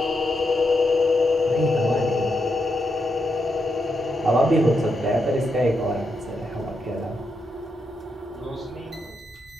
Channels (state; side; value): normal; both; correlation 0.83